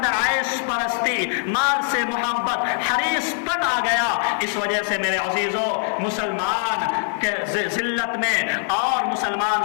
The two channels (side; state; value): right; silent; 57 dB below the other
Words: आयश परस्ती, माल से मोहब्बत, हरीसपन आ गया। इस वजह से मेरे अजीजों मुसलमान के जिल्लत में और मुसलमान